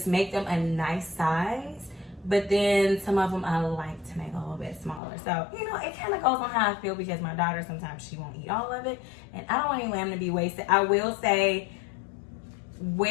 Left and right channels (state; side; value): drops out; right; at 5.0 s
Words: make them a nice size. But then some of them I like to make a little bit smaller. So, you know, it kind of goes on how I feel because my daughter, sometimes she won't eat all of it. And I don't want any lamb to be wasted. I will say,